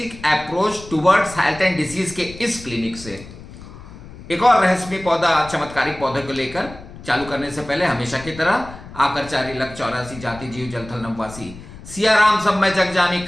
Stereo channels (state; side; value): noise; left; rumble, 16 dB below the sound